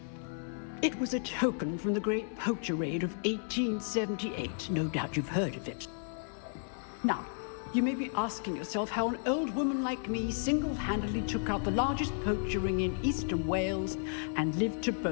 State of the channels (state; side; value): silent; right; 56 dB below the other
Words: It was a token from the Great Poacher Raid of 1878. No doubt you've heard of it. Now, you may be asking yourself how an old woman like me single-handedly took out the largest poacher ring in eastern Wales and lived to